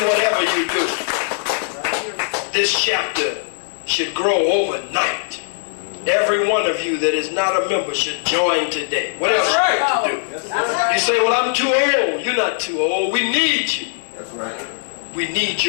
whatever you do. This chapter should grow overnight. Every one of you that is not a member should join today. What else should you do? You say, well, I'm too old. You're not too old. We need you. That's right. We need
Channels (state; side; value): silent; right; digital silence